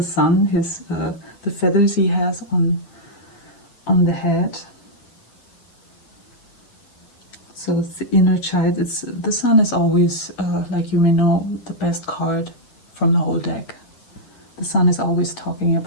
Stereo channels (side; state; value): right; late; 8.6 ms